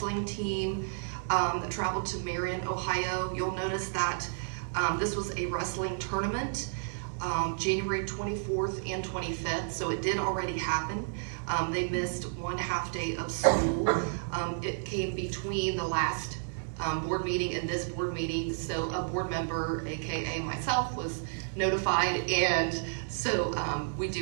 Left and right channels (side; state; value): left; silent; digital silence